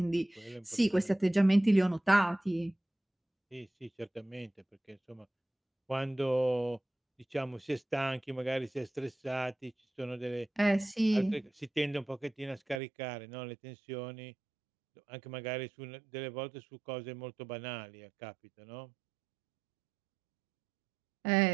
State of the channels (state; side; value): drops out; left; at 12.8 s